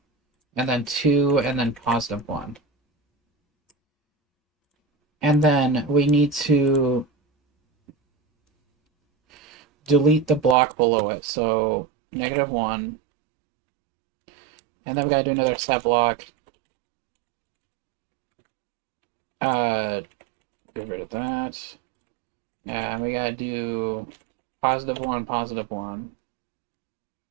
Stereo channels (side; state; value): left; drops out; at 10.6 s